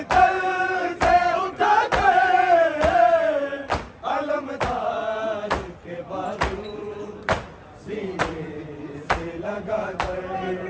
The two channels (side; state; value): both; identical; correlation 1.00